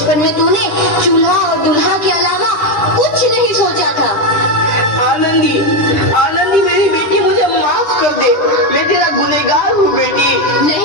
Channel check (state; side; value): late; right; 9.9 ms